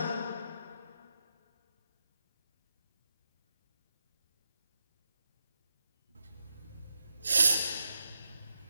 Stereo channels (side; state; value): both; inverted; correlation -0.86